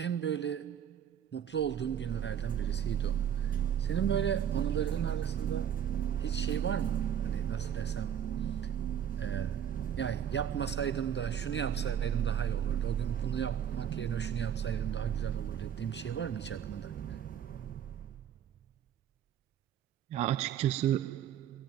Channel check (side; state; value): left; quieter; 9.2 dB